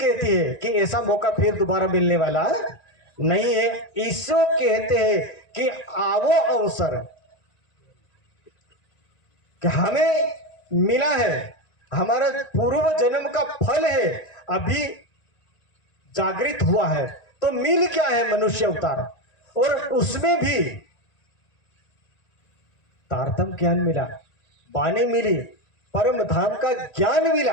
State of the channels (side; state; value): right; late; 1.9 ms